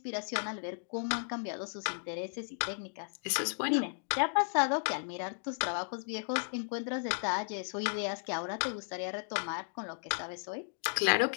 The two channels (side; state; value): right; silent; digital silence